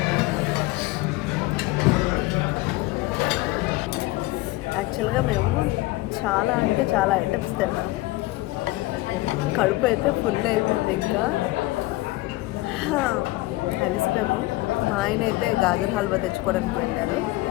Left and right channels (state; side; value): quieter; right; 19.6 dB